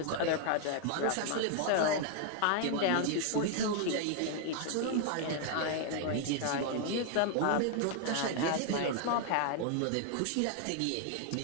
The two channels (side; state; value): both; different; correlation 0.00